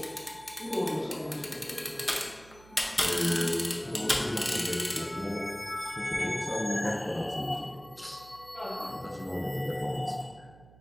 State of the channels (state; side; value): noise; right; hum, 22 dB below the sound